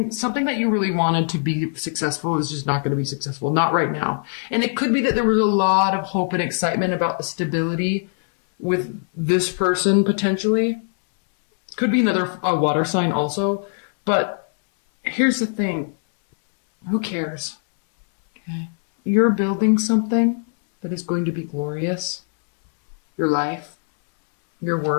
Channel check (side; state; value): right; silent; 65 dB below the other